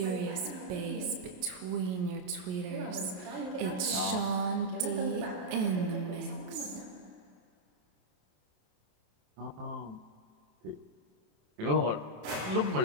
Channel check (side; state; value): left; late; 28 ms